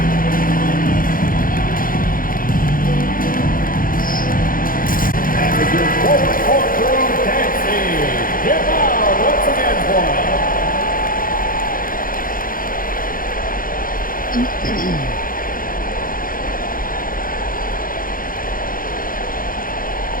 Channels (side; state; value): right; late; 0.41 ms